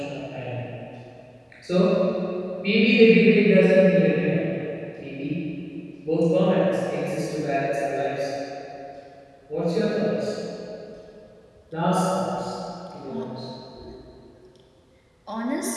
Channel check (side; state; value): both; identical; correlation 1.00